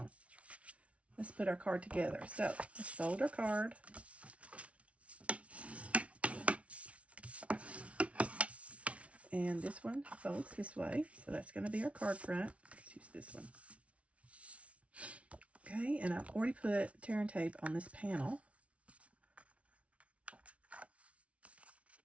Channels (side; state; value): left; late; 0.063 ms